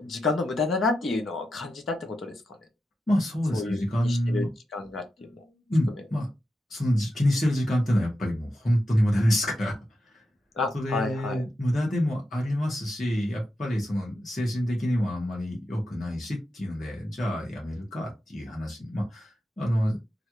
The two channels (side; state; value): both; normal; correlation 0.89